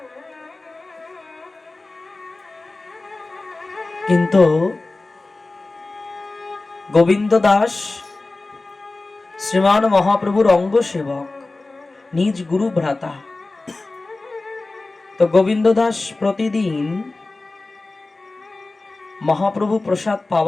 কিন্তু গোবিন্দ দাস শ্রীমান মহাপ্রভুর অঙ্গ সেবক, নিজ গুরু ভ্রাতা। তো গোবিন্দ দাস প্রতিদিন মহাপ্রভু প্রসাদ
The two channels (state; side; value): quieter; right; 3.3 dB